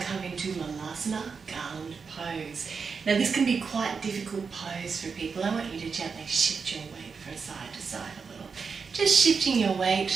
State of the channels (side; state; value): left; quieter; 5.4 dB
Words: come into Allannah, garland pose. Now this can be quite a difficult pose for people. I want you to gently shift your weight from side to side a little. Just shifting your